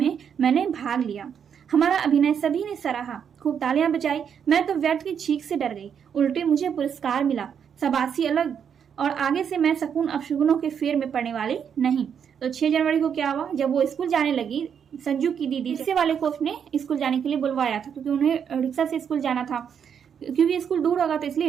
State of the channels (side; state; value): left; quieter; 7.7 dB